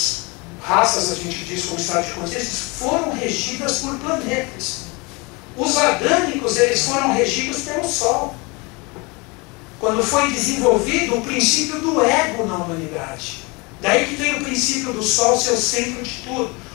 a gente diz como estado de consciência, foram regidas por planetas. Os adâmicos, eles foram regidos pelo Sol. Quando foi desenvolvido o princípio do ego na humanidade. Daí que tem o princípio do Sol ser o centro de tudo.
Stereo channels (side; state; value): right; quieter; 27.5 dB